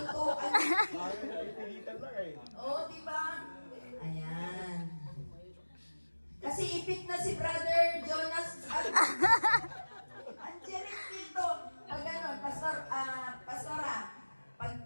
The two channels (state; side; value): inverted; both; correlation -1.00